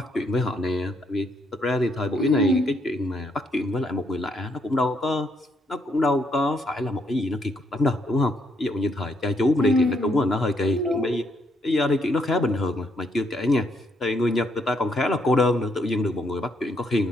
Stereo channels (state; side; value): normal; both; correlation 0.73